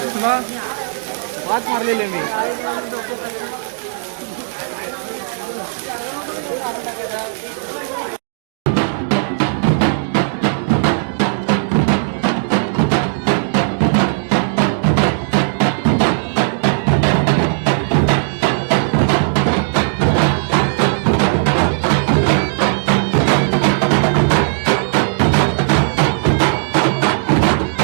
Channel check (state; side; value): silent; left; digital silence